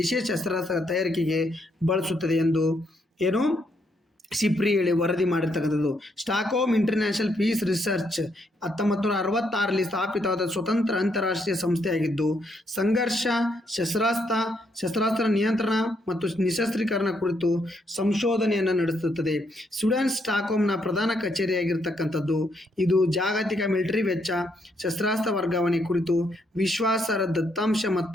ಶಸ್ತ್ರಾಸ್ತ್ರ ತಯಾರಿಕೆಗೆ ಬಳಸುತ್ತದೆ ಎಂದು ಏನು ಸಿಪ್ರಿ ಹೇಳಿ ವರದಿ ಮಾಡಿರ್ತಕ್ಕಂಥದ್ದು. ಸ್ಟಾಕ್ಹೋಮ್ ಇಂಟರ್ನ್ಯಾಷನಲ್ ಪೀಸ್ ರಿಸರ್ಚ್ 1966ರಲ್ಲಿ ಸ್ಥಾಪಿತವಾದ ಸ್ವತಂತ್ರ ಅಂತಾರಾಷ್ಟ್ರೀಯ ಸಂಸ್ಥೆಯಾಗಿದ್ದು ಸಂಘರ್ಷ, ಶಸ್ತ್ರಾಸ್ತ್ರ ನಿಯಂತ್ರಣ ಮತ್ತು ನಿಶಸ್ತ್ರೀಕರಣ ಕುರಿತು ಸಂಶೋಧನೆಯನ್ನು ನಡೆಸುತ್ತದೆ. ಸ್ವೀಡನ್ ಸ್ಟಾಕ್ಹೋಮ್ನ ಪ್ರಧಾನ ಕಚೇರಿಯಾಗಿರ್ತಕ್ಕಂಥದ್ದು. ಇದು ಜಾಗತಿಕ ಮಿಲಿಟರಿ ವೆಚ್ಚ, ಶಸ್ತ್ರಾಸ್ತ್ರ ವರ್ಗಾವಣೆ ಕುರಿತು ವಿಶ್ವಾಸಾರ್ಹ ದತ್ತಾಂಶ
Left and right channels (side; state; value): both; normal; correlation 0.75